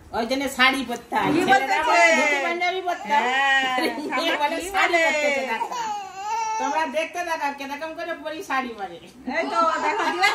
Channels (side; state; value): both; identical; correlation 1.00